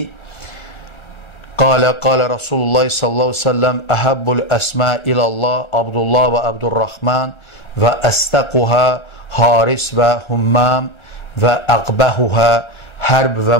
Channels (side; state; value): right; late; 1.3 ms